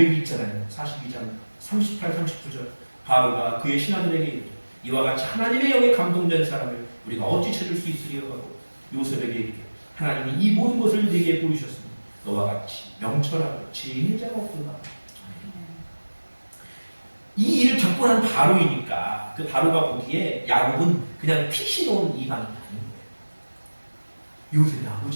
있잖아요. 42장 38, 39절. 바로가 그의 신하들에게 이르되 이와 같이 하나님의 영에 감동된 사람을 우리가 어찌 찾을 수 있으리요 하고 요셉에게 이르되 하나님이 이 모든 것을 네게 보이셨으니 너와 같이 명철하고 지혜 자가 없도다. 이 일을 겪고 난 바로이니까 그 바로가 보기에 야곱은 그냥 핏이 놓은 이방이 아닌 거예요. 요셉의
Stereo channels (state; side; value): inverted; both; correlation -1.00